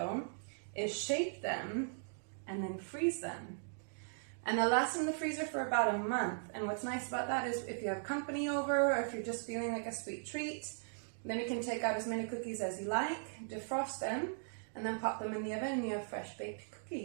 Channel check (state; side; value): silent; left; digital silence